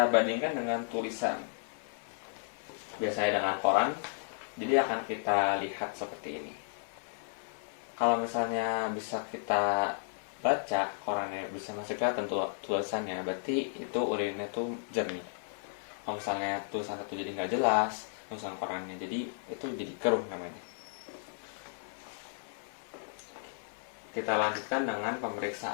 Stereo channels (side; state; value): right; silent; digital silence